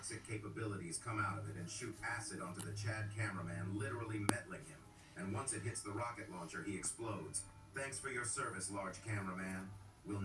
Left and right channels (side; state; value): both; identical; correlation 1.00